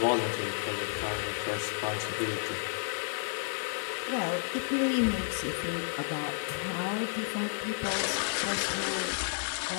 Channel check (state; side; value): silent; right; 57 dB below the other